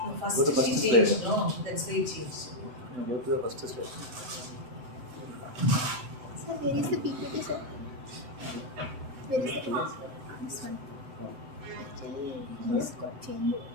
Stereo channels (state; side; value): late; left; 7.9 ms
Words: First Go to first change, slide. no, that's very change. Go to the first slide. Sir, where is the PPT, sir? Where is the PPT? This one. Actually, this got changed.